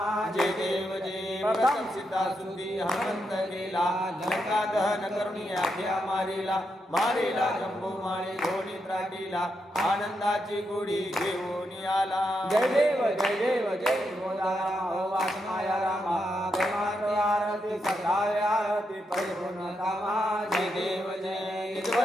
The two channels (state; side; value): normal; both; correlation 0.83